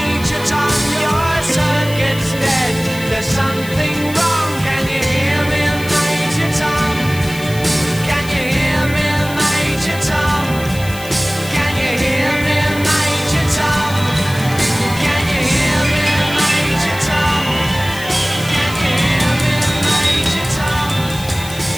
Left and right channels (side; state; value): left; noise; hiss, 14 dB below the sound